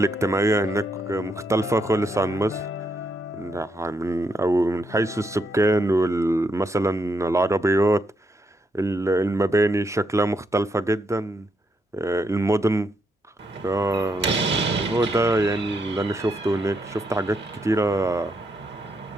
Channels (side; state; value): both; normal; correlation 0.78